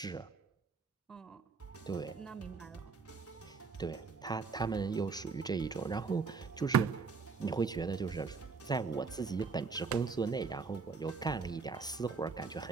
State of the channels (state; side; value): quieter; left; 4.9 dB